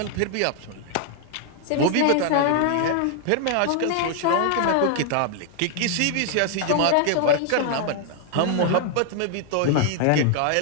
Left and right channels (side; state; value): both; different; correlation 0.00